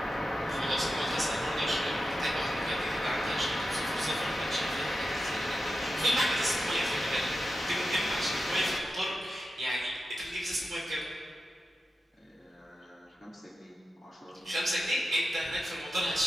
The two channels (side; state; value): both; normal; correlation 0.91